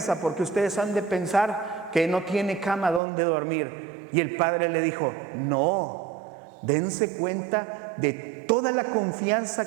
porque ustedes han de pensar que no tiene cama donde dormir. Y el padre le dijo, no, dense cuenta de toda la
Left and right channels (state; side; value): drops out; left; at 3.0 s